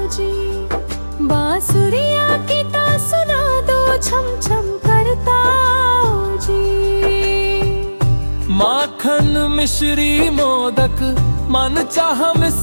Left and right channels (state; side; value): inverted; both; correlation -1.00